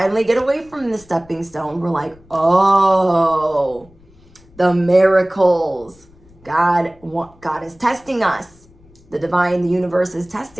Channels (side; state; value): left; noise; rumble, 27 dB below the sound